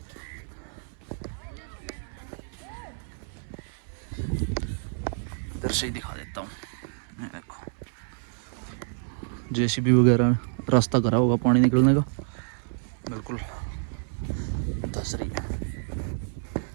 इधर से ही दिखा देता हूँ। ये देखो जेसीबी वगैरह रास्ता करा होगा पानी निकलने का, बिल्कुल धस रही है।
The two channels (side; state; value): left; silent; 59 dB below the other